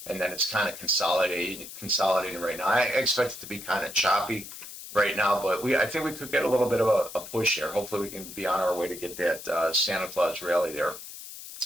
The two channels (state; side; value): noise; left; hiss, 13 dB below the sound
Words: And then it's kind of consolidating right now. I expect it to be kind of choppy right now, but I think we could get a little bit of a push here. Hopefully we can be on our way to get that Santa Claus rally there.